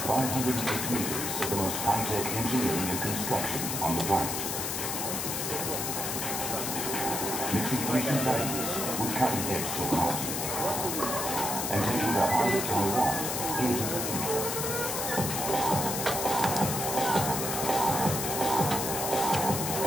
508 meters of the most high-tech engineering and construction on the planet. Mixing ancient values with cutting-edge technology and taking the heart of Taiwan into the future.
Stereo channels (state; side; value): noise; left; hiss, 2 dB below the sound